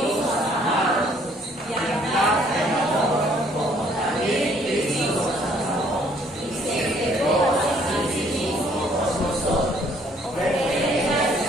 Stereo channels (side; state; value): both; normal; correlation 0.62